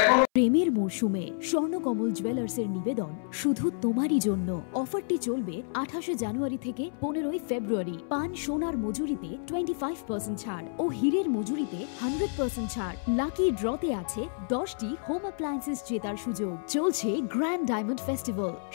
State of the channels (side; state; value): right; silent; 58 dB below the other